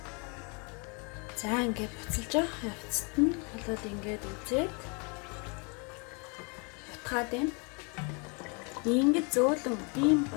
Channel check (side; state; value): right; quieter; 33.4 dB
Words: За ингээд буцалж явах явцад нь болоод ингээд үзээд утгаад байна. Ингээд